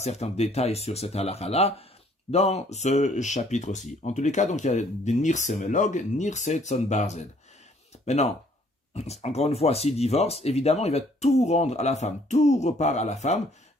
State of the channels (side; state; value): both; normal; correlation 0.62